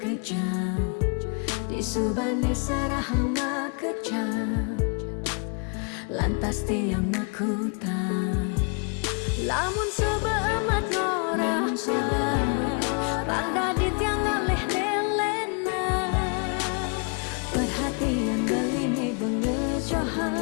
Disubane serahan makejam, lantas tiang makutang. Lamun sebeamat norahan, pangdadi tiang ngaleh nelena. Perhatian beline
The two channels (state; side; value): quieter; right; 37.0 dB